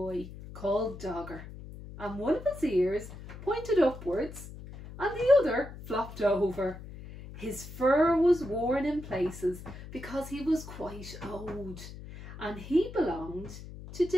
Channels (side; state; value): left; noise; hum, 13 dB below the sound